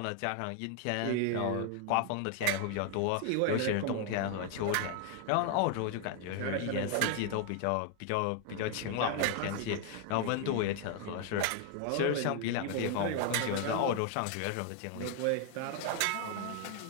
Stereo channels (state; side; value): different; both; correlation 0.00